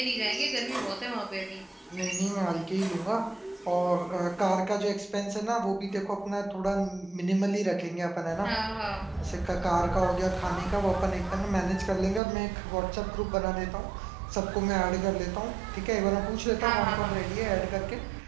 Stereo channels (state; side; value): drops out; left; at 12.2 s